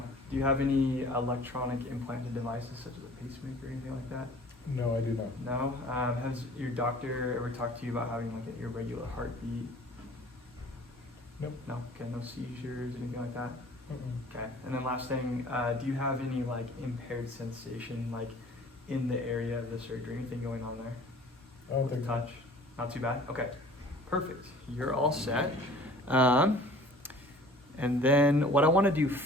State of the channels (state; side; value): normal; both; correlation 0.48